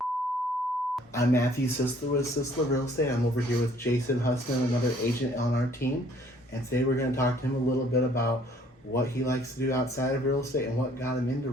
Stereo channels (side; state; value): both; normal; correlation 0.59